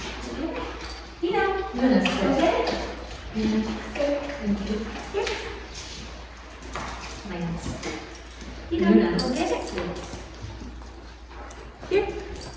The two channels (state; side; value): identical; both; correlation 1.00